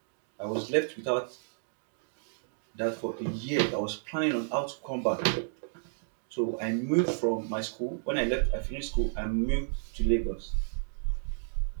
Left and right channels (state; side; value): silent; left; digital silence